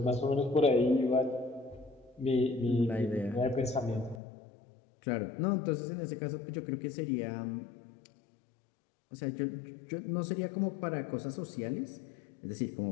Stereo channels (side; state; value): right; drops out; at 4.2 s